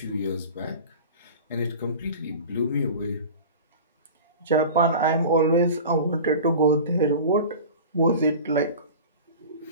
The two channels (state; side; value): inverted; both; correlation -0.36